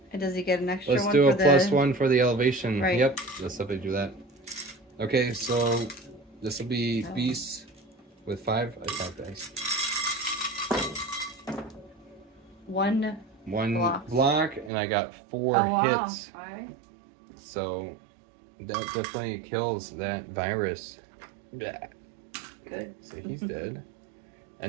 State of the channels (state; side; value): drops out; left; at 14.7 s